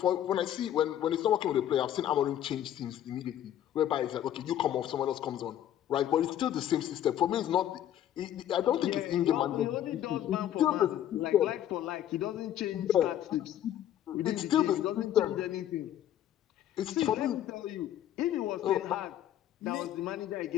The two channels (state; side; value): quieter; right; 11.4 dB